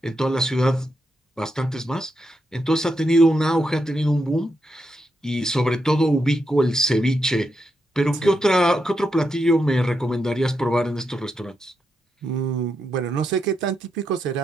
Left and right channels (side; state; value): both; normal; correlation 0.83